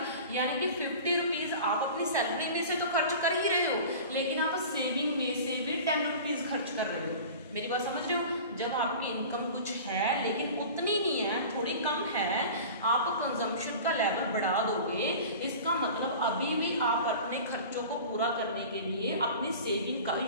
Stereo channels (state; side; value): inverted; both; correlation -0.38